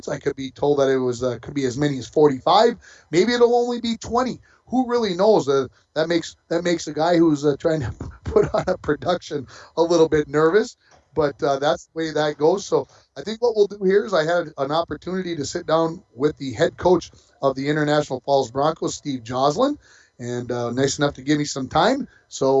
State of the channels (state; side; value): identical; both; correlation 1.00